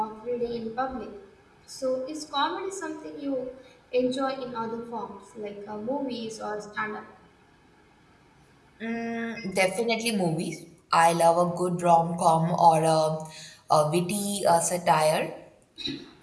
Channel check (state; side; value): identical; both; correlation 1.00